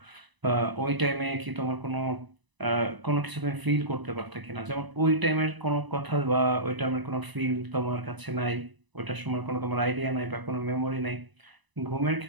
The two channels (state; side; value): late; left; 1.0 ms